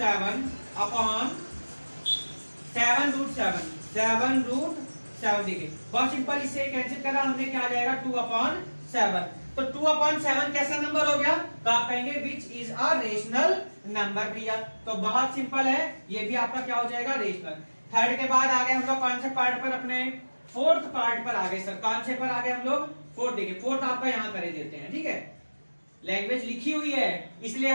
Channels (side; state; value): both; inverted; correlation -1.00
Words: अपॉन 7 रूट 7, 7 रूट 7। देखिए बहुत सिंपल, इससे कैंसिल करा हमने, क्या आ जाएगा 2 अपॉन 7। तो 2 अपॉन 7 कैसा नंबर हो गया, तो आप कहेंगे which is a rational number भैया। तो बहुत सिंपल है, ये भी आपका क्या हो जाएगा, रेशनल। थर्ड के बाद आ गए हम लोग कौन से पार्ट पर, अपने फोर्थ पार्ट पर आ गए। सर कौन से पर आ गए हम लोग, फोर्थ। देखिए फोर्थ आपका यहां करे देते हैं, ठीक है, लैंग्वेज लिखी हुई है इसलिए